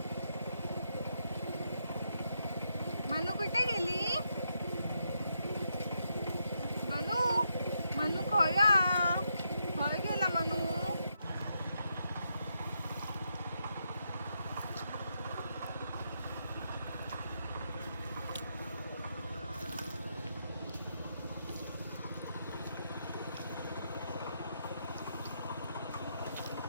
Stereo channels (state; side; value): inverted; both; correlation -0.81